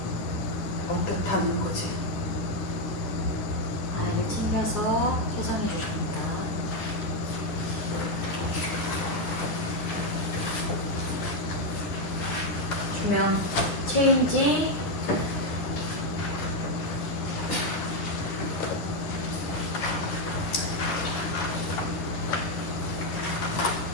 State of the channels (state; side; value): late; right; 10 ms